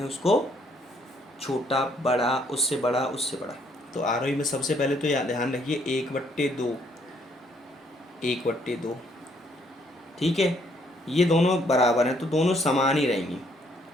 हैं उसको, छोटा बड़ा, उससे बड़ा, उससे बड़ा। तो आरोही में सबसे पहले तो ध्यान रखिए 1/2, 1/2। ठीक है, ये दोनों बराबर हैं तो दोनों समान ही रहेंगी।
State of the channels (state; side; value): normal; both; correlation 0.67